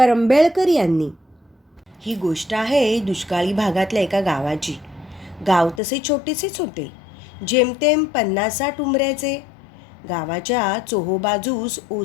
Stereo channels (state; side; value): drops out; right; at 5.8 s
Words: यांनी. ही गोष्ट आहे दुष्काळी भागातल्या एका गावाची. गाव तसे छोटेसेच होते, जेमतेम 50-60 उंबऱ्याचे. गावाच्या चोहोबाजूस